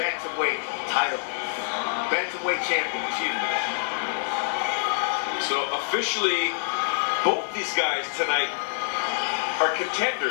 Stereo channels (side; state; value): right; silent; digital silence